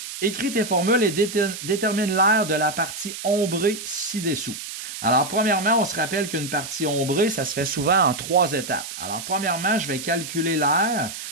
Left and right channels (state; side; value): noise; right; hiss, 9 dB below the sound